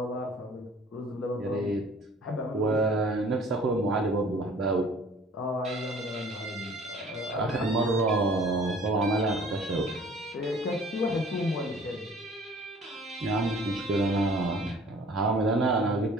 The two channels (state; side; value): normal; both; correlation 0.51